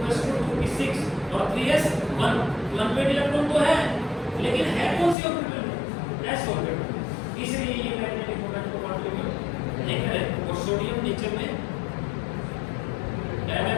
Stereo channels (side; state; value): right; drops out; at 5.2 s